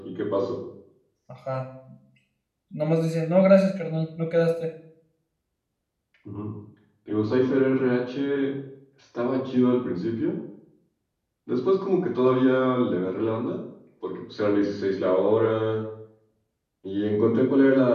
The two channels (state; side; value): identical; both; correlation 1.00